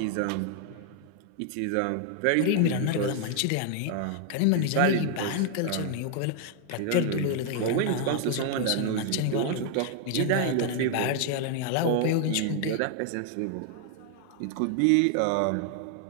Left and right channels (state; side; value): different; both; correlation 0.00